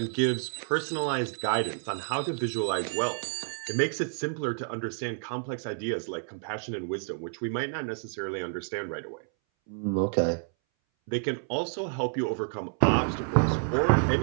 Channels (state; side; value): silent; left; 58 dB below the other